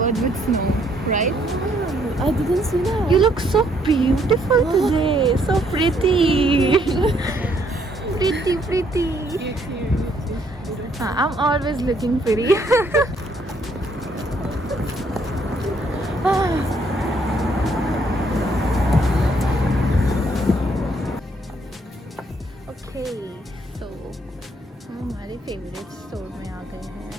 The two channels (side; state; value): both; normal; correlation 0.68